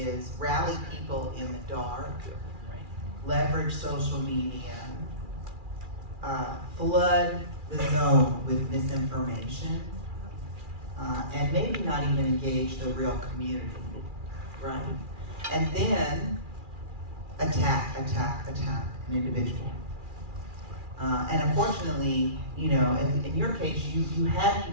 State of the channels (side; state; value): left; late; 2.4 ms